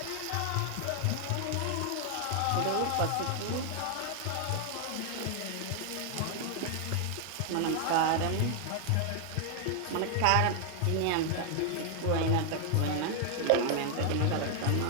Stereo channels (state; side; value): different; both; correlation 0.00